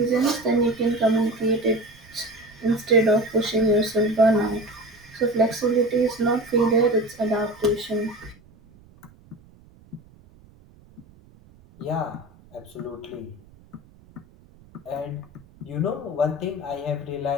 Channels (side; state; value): right; noise; rumble, 26 dB below the sound